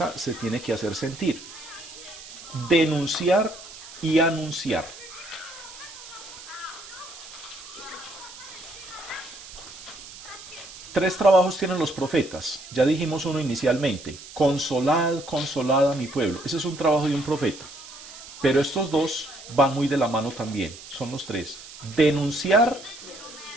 se tiene que hacer sentir. Denunciar y anunciar. Tres trabajos tienen los profetas. Ya dijimos uno inicialmente. Consolad, consolad a mi pueblo. Ese es un trabajo de un profeta. Pero estos dos van muy de la mano también. Son los tres. Denunciar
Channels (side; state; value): right; noise; hiss, 15 dB below the sound